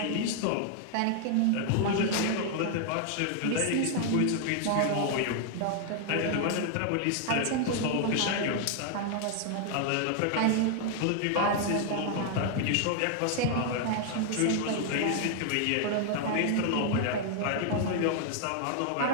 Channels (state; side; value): different; both; correlation 0.00